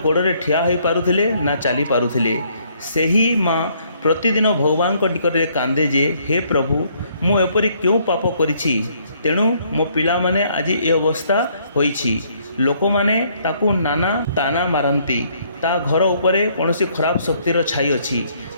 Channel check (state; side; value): inverted; both; correlation -0.66